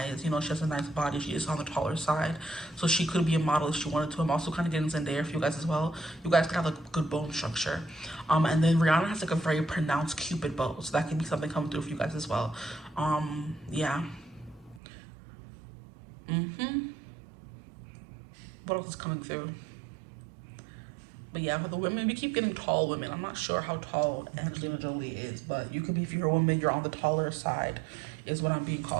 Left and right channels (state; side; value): drops out; left; at 14.8 s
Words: You know, she has a nice body. She is on the taller side, so she could be a model if she wanted to. I'm also kind of getting Zendaya for you guys as well. You guys could have like good bone structure. And then Rihanna has like a very pronounced Cupid bow, so that could be something coming through for you guys as well. Yeah. What else is coming through? But yeah, for the women, we keep getting tall women. I'm not sure how tall Angelina Jolie is, but you could be, if you're a woman, you're on the taller side, is what I'm being